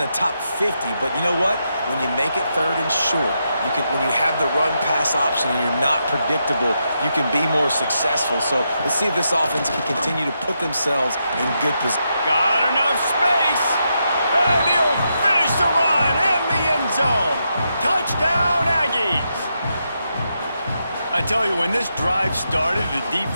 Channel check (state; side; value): inverted; both; correlation -0.83